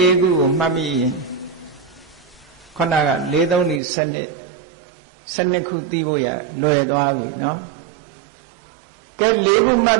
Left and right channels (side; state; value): left; drops out; at 3.8 s